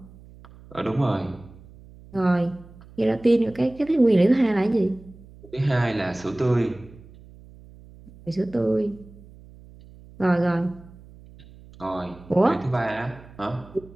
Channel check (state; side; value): noise; right; hum, 21 dB below the sound